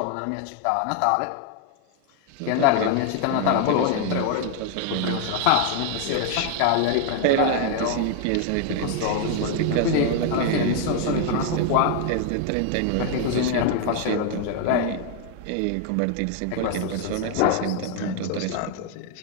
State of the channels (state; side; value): different; both; correlation 0.00